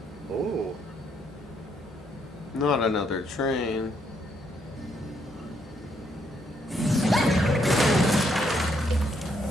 Ooh. Not another train.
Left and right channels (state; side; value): normal; both; correlation 0.73